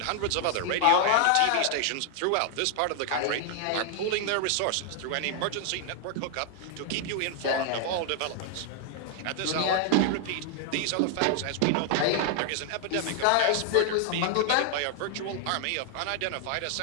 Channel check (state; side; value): different; both; correlation 0.00